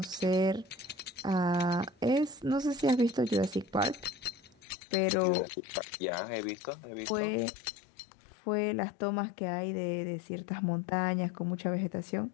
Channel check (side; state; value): right; drops out; at 4.5 s